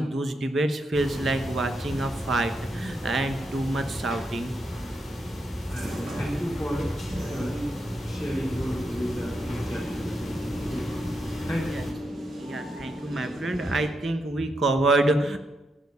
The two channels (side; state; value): both; normal; correlation 0.83